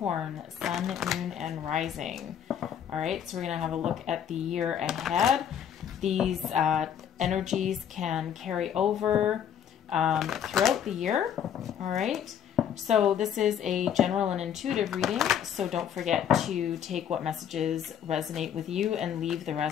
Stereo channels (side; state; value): right; quieter; 9.0 dB